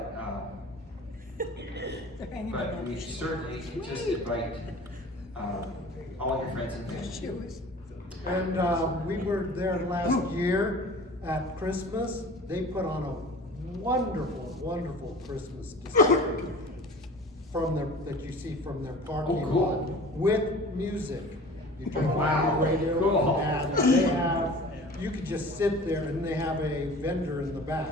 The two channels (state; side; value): normal; both; correlation 0.42